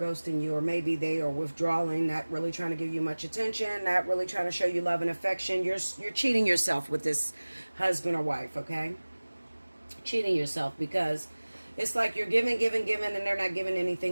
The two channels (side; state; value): both; inverted; correlation -1.00